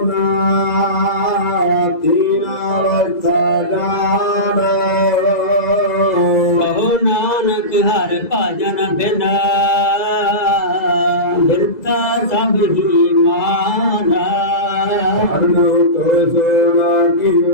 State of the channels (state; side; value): late; right; 2.0 ms